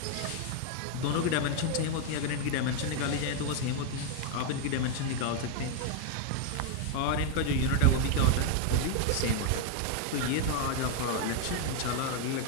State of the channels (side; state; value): both; different; correlation 0.00